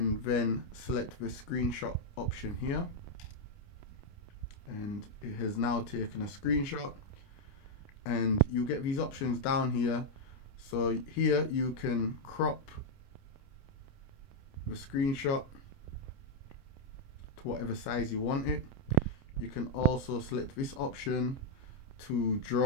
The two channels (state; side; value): late; right; 29 ms